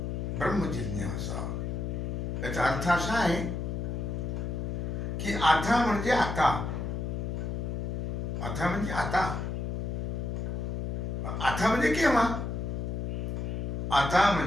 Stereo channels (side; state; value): left; noise; hum, 2 dB below the sound